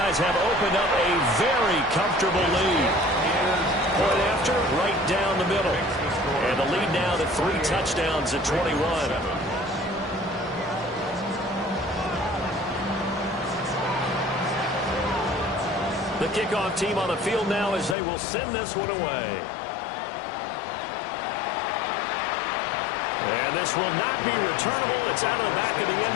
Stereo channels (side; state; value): right; drops out; at 17.9 s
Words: have opened up a very comfortable lead. Point after, right down the middle. And the lead now to 3 touchdowns at 21. The kickoff team on the field now as they will send this one away. And this will not be returnable. It's out of the back of the